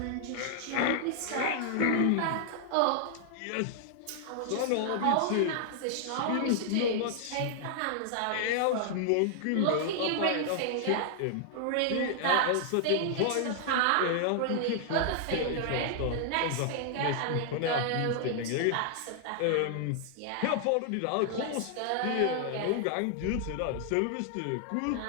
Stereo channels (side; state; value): both; different; correlation -0.01